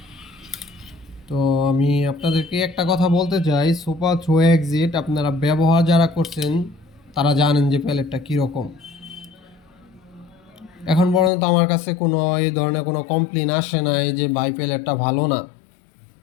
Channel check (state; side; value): drops out; right; at 11.3 s